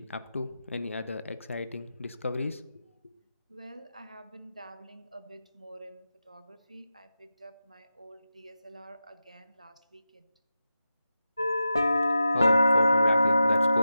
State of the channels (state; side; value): inverted; both; correlation -0.90